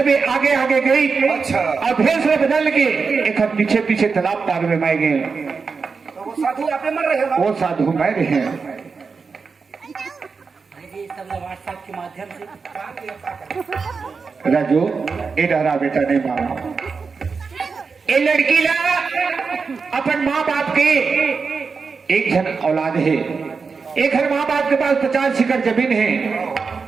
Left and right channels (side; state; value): left; quieter; 5.0 dB